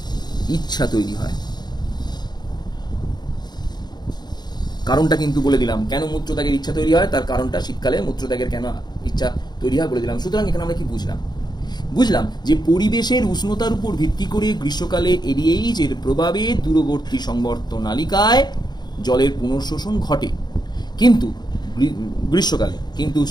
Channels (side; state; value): right; late; 0.20 ms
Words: ইচ্ছা তৈরি হয়। কারণটা কিন্তু বলে দিলাম, কেন মূত্রত্যাগের ইচ্ছা তৈরি হয়, তার কারণটা শীতকালে মূত্রত্যাগের কেন ইচ্ছা তৈরি হয় বলে দিলাম। সুতরাং এখানে আমরা কি বুঝলাম যে পরিবেশের উষ্ণতার উপর ভিত্তি করে গ্রীষ্মকালে এডিএইচ এর প্রভাবে দূরবর্তী সংবর্ত নালিকায় জলের পুনঃশোষণ ঘটে, কিন্তু গ্রীষ্মকালে, কিন্তু